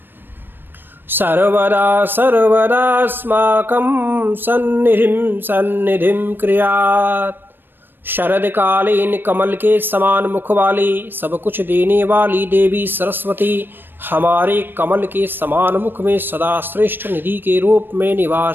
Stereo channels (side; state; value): left; late; 0.096 ms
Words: सर्वदा सर्वदास्माकं सन्निधिं क्रियात्। शरदकालीन कमल के समान मुख वाली, सब कुछ देने वाली देवी सरस्वती हमारे कमल के समान मुख में सदा श्रेष्ठ निधि के रूप में